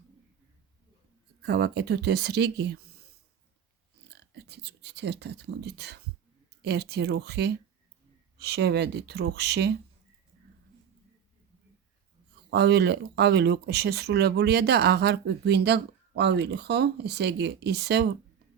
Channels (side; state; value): left; quieter; 8.3 dB